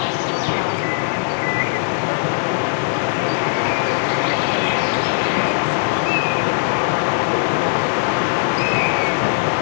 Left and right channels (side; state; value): right; silent; digital silence